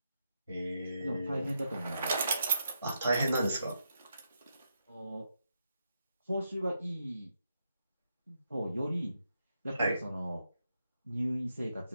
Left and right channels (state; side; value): inverted; both; correlation -0.82